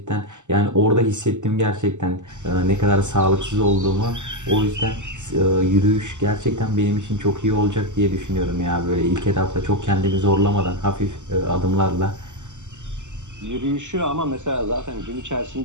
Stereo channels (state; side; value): late; left; 0.84 ms